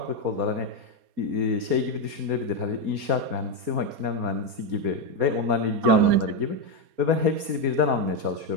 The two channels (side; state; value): left; late; 4.3 ms